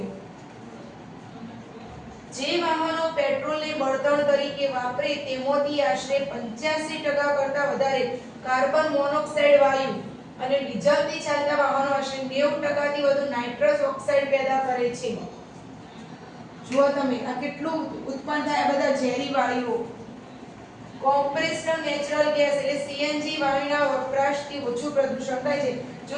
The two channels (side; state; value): both; identical; correlation 1.00